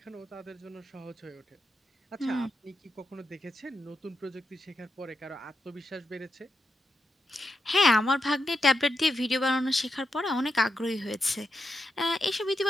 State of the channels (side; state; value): both; normal; correlation 0.85